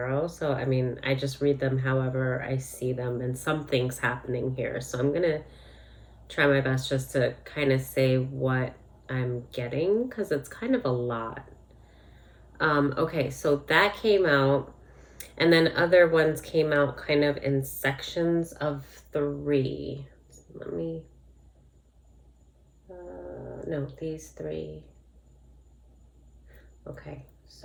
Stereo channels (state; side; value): identical; both; correlation 1.00